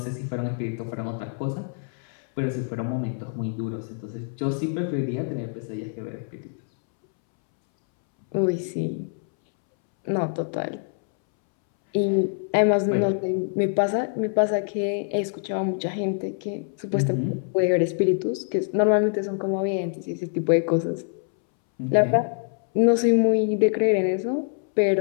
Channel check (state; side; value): silent; right; 62 dB below the other